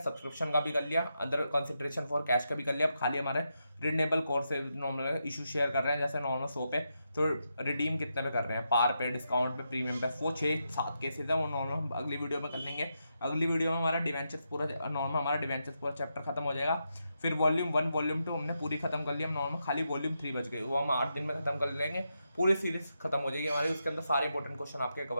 का भी कर लिया, अदर कंसिडरेशन फॉर कैश का भी कर लिया। अब खाली हमारे रिडनेबल कोर्स से नॉर्मल इशू शेयर कर रहे हैं, जैसे नॉर्मल 100 पे, तो रिडीम कितने पे कर रहे हैं, पार पे, डिस्काउंट पे, प्रीमियम पे, वो 6-7 केसेस है, वो नॉर्मल अगली वीडियो में कर लेंगे। अगली वीडियो में हमारा डिवेंचर्स पूरा नॉर्मल, हमारा डिवेंचर्स पूरा चैप्टर खत्म हो जाएगा। फिर वॉल्यूम 1 वॉल्यूम 2 हमने पूरी खत्म कर ली, हम नॉर्मल खाली वॉल्यूम 3 बच गए, वो हम 8 दिन में खत्म कर लेंगे, पूरी सीरीज खत्म हो जाएगी हमारी, उसके अंदर सारे इंपॉर्टेंट क्वेश्चन आपके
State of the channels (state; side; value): inverted; both; correlation -0.84